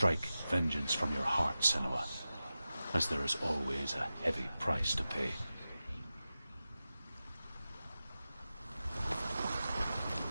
vengeance from your heart, Senua, as there is always a heavy price to pay.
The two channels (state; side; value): inverted; both; correlation -0.93